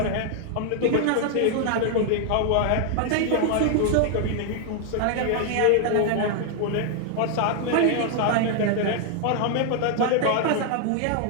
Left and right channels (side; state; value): both; different; correlation 0.00